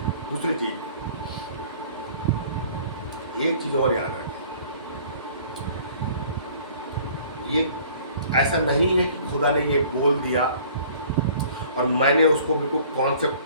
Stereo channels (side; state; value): both; inverted; correlation -0.52